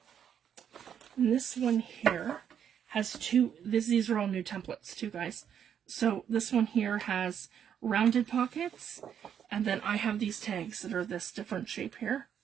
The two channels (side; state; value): left; quieter; 8.7 dB